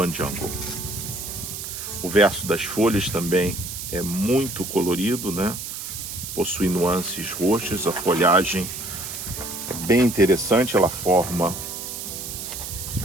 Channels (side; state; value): right; noise; hiss, 7 dB below the sound